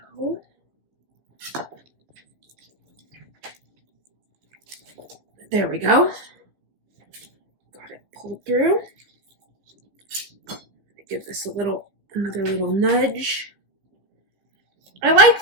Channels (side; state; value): left; late; 15 ms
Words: there we go. Got it pulled through. Give this another little nudge. I like